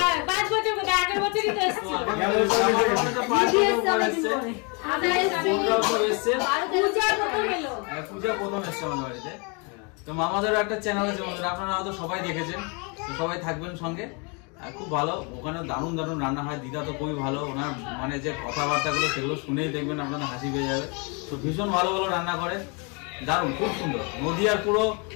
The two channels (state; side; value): quieter; right; 33.1 dB